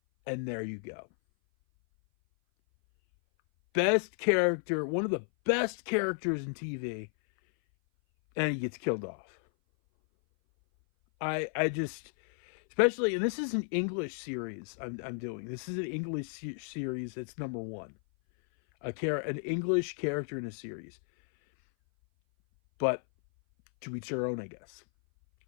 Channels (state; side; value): silent; right; 56 dB below the other